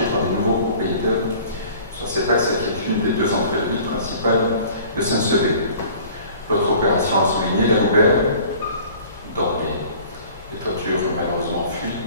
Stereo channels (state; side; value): inverted; both; correlation -0.48